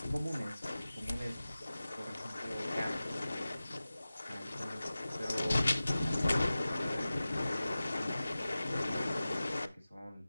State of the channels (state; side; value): inverted; both; correlation -0.96